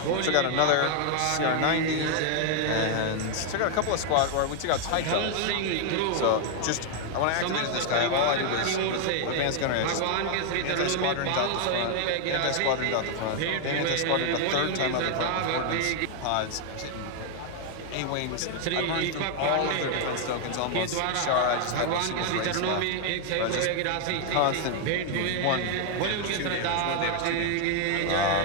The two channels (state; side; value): different; both; correlation 0.00